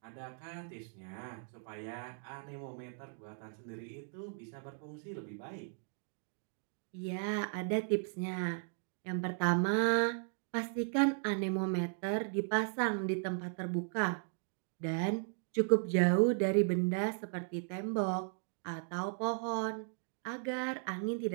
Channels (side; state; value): left; silent; 53 dB below the other